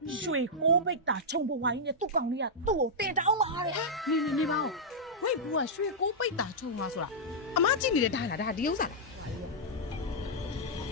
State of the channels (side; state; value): both; normal; correlation -0.09